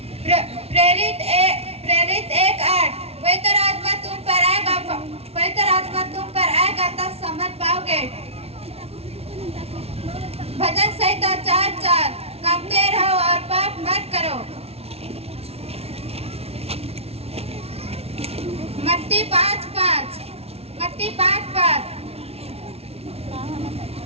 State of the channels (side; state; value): left; late; 0.30 ms